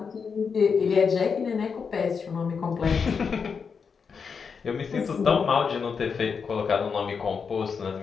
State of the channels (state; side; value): quieter; right; 5.9 dB